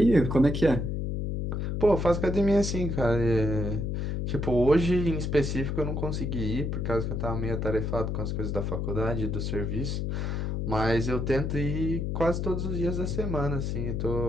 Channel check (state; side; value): noise; left; hum, 1 dB below the sound